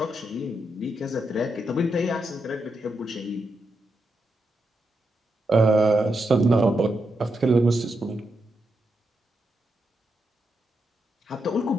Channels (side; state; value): both; normal; correlation 0.84